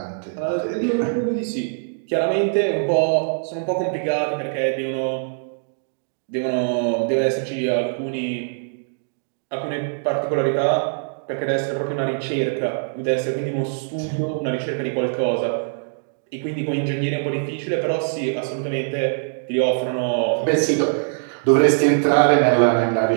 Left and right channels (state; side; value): silent; left; digital silence